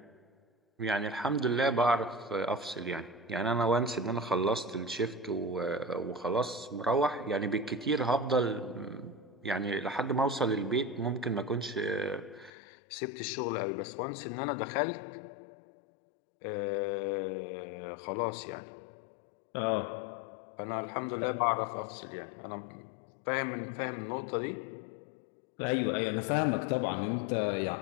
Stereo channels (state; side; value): drops out; right; at 12.5 s